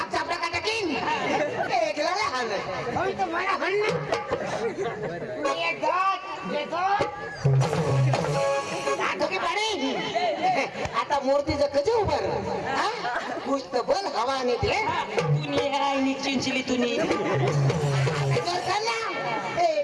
चापला का टाकीन एकला हाण होय तर मला हाण ये दात की पाणी आता मूर्तीचं कधी उभं कुछ तर बोल हवा नाही दे तुनी आहे नी चिंचली तुनी जोर कर ना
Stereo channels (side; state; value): both; identical; correlation 1.00